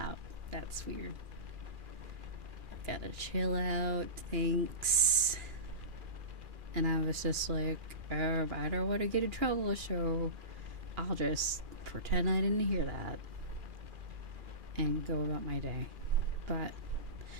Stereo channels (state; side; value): late; left; 2.4 ms